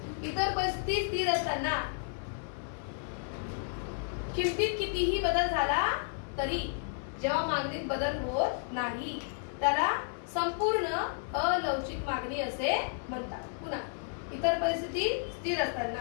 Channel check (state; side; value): silent; right; 56 dB below the other